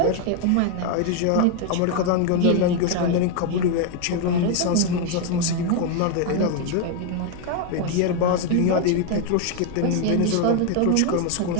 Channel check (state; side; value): different; both; correlation 0.01